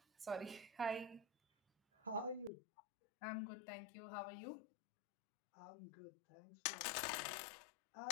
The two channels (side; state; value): right; drops out; at 2.5 s